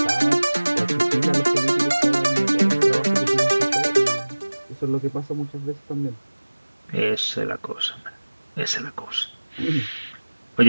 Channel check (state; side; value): inverted; both; correlation -1.00